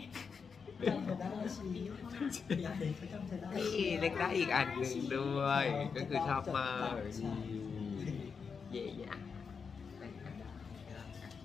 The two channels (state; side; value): quieter; right; 5.8 dB